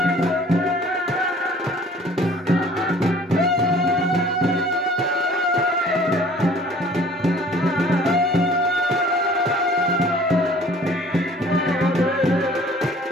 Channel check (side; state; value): both; normal; correlation 0.51